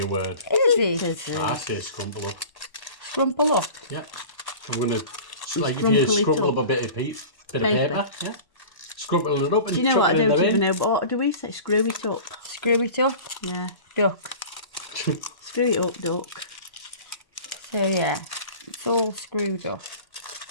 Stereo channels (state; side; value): late; right; 1.1 ms